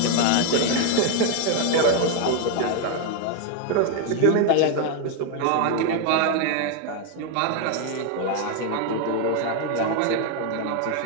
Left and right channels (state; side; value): different; both; correlation 0.01